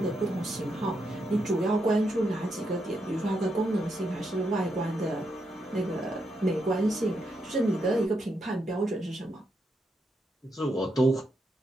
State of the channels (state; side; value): normal; both; correlation 0.81